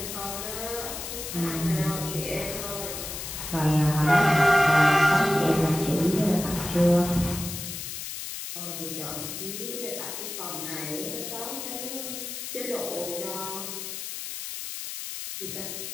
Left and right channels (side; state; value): left; noise; hiss, 7 dB below the sound